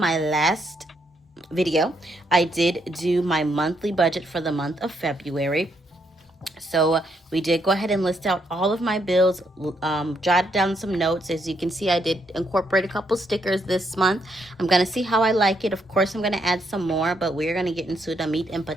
last video, I did do my monthly budget for the month of February. So we did go ahead and list out all of my bills, jotted down some notes. As you can see, I did incorporate a couple stickers this month. I'm going to see how I like it. Of course, I'm going to add some more, but we're going to get into the meat and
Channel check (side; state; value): both; normal; correlation 0.75